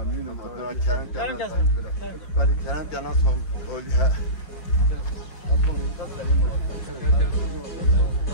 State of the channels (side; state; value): right; late; 5.3 ms